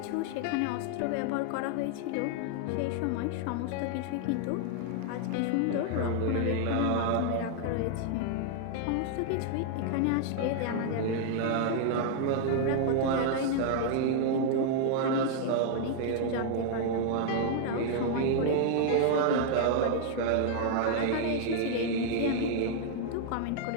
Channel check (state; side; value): different; both; correlation 0.00